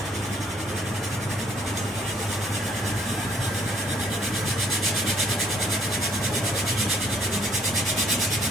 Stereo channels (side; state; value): both; normal; correlation 0.64